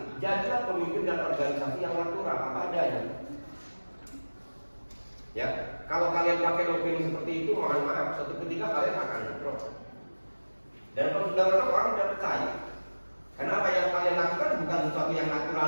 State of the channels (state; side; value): inverted; both; correlation -1.00